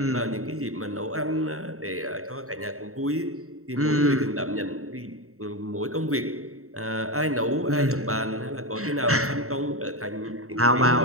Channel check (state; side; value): late; left; 0.64 ms